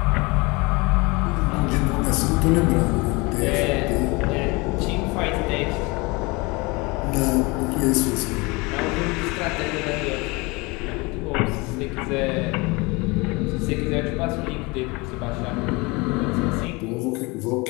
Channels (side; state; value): right; quieter; 25.9 dB